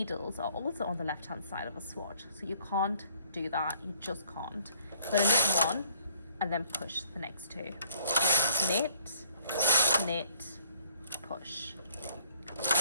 are also on the left hand side of a swatch, so you can't do that. You just can't. You're going to knit one and then push the next two. Knit, knit, push,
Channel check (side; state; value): both; inverted; correlation -0.59